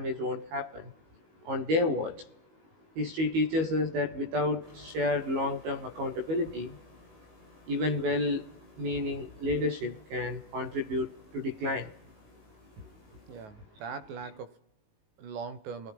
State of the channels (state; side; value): late; left; 19 ms